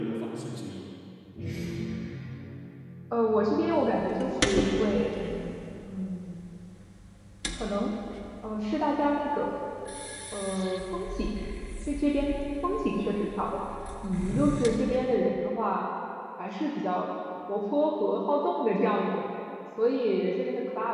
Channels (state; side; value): identical; both; correlation 1.00